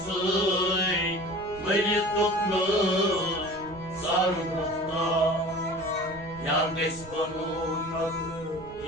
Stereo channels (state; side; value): noise; right; rumble, 18 dB below the sound